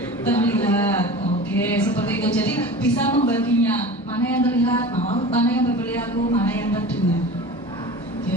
Terlihat. Oke, seperti itu. Jadi bisa membaginya mana yang terlihat, mana yang berperilaku, mana yang terdengar.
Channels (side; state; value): both; normal; correlation 0.35